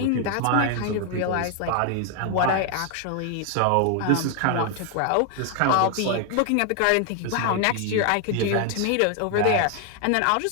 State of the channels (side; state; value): both; different; correlation 0.00